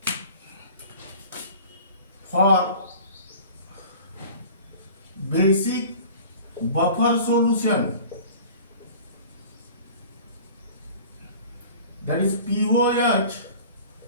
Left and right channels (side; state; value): both; inverted; correlation -0.43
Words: for basic buffer solution, that is pOH